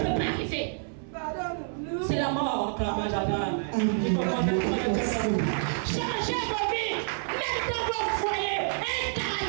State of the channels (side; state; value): left; silent; 59 dB below the other